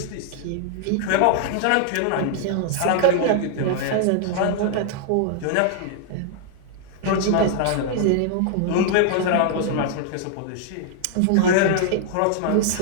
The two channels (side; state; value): both; different; correlation -0.01